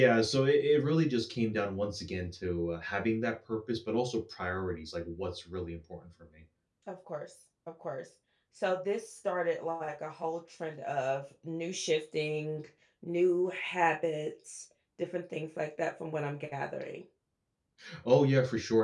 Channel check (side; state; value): both; identical; correlation 1.00